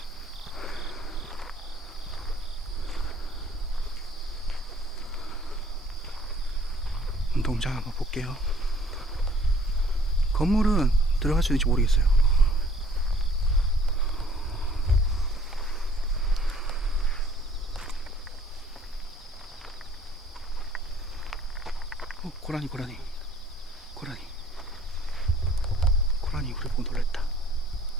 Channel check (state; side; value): normal; both; correlation 0.57